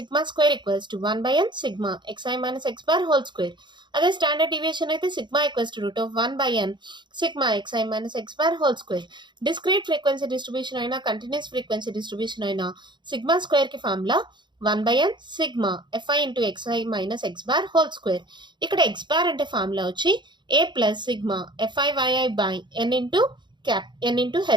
square equals to 1/n sigma xi minus x bar whole square. అదే స్టాండర్డ్ డీవియేషన్ అయితే sigma equals to root of 1/n sigma xi minus x bar whole square. Discrete frequency distribution అయినా continuous frequency distribution అయినా sigma square కి formula 1/n sigma fi into xi minus x bar whole square. ఇక్కడ x bar అంటే formula వచ్చి a plus sigma fi by n into cap n into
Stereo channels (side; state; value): left; late; 0.22 ms